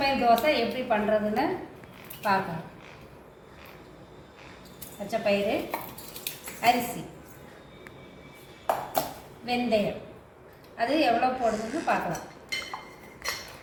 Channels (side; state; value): both; identical; correlation 1.00